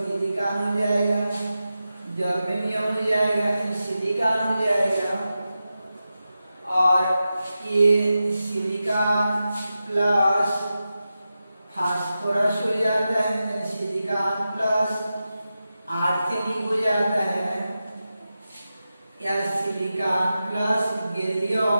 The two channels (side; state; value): both; inverted; correlation -0.91